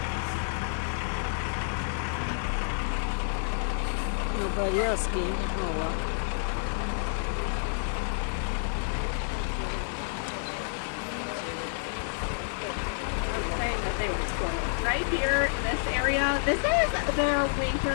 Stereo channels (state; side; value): silent; right; digital silence